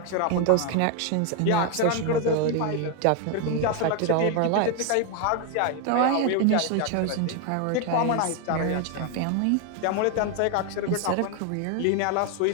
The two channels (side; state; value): both; different; correlation 0.01